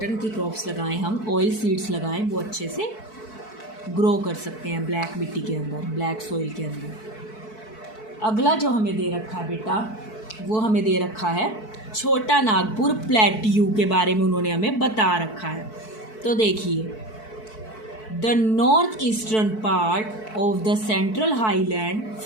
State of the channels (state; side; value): late; right; 4.6 ms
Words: की क्रॉप्स लगाएं हम, ऑयल सीड्स लगाएं, वो अच्छे से ग्रो कर सकते हैं ब्लैक मिट्टी के अंदर, ब्लैक सॉइल के अंदर। अगला जो हमें दे रखा है बेटा, वो हमें दे रखा है छोटा नागपुर प्लेट्यू के बारे में उन्होंने हमें बता रखा है। तो देखिए, the north eastern part of the central highland